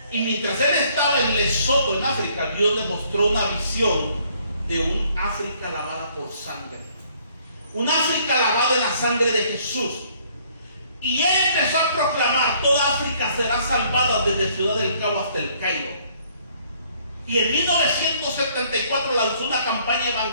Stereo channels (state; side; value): inverted; both; correlation -0.63